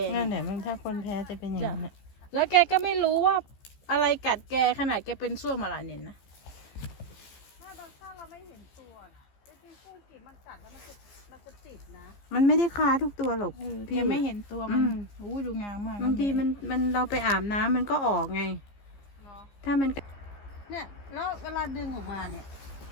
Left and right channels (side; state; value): right; late; 15 ms